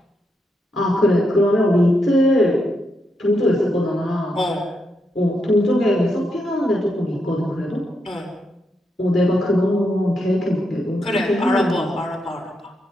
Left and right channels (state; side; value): normal; both; correlation 0.82